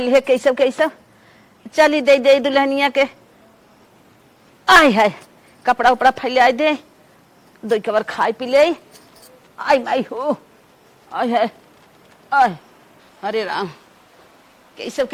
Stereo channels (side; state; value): both; identical; correlation 1.00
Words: है कैसे कैसे। चली दे दे दुल्हनिया के। आय हाय, कपड़ा उपड़ा फैला दे, दो कबर खाए पी ले। आई माई हो, आय हाय आय, अरे राम, कैसे